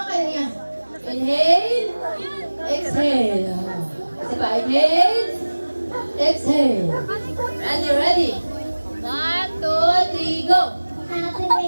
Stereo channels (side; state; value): both; inverted; correlation -1.00